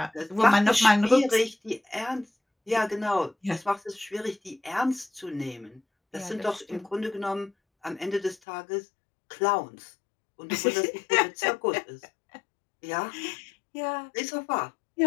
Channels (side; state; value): right; drops out; at 8.3 s